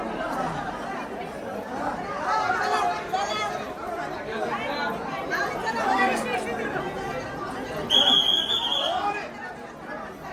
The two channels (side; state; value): both; identical; correlation 1.00